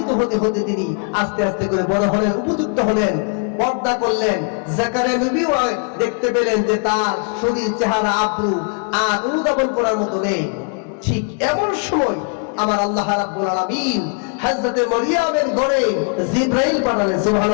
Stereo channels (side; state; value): right; quieter; 38.5 dB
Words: হতে হতে তিনি আস্তে আস্তে করে বড় হলেন, উপযুক্ত হলেন, পর্দা করলেন। জাকারিয়া নবীও দেখতে পেলেন যে তার শরীর, চেহারা, আব্রু আর অনুধাবন করার মতো নেই। ঠিক এমন সময় আমার আল্লাহ রাব্বুল আলামিন হযরত মারিয়ামের ঘরে জিবরাইল পাঠালেন।